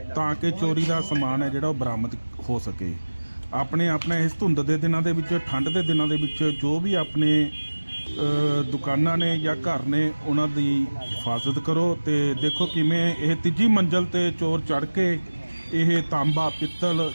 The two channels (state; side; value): inverted; both; correlation -1.00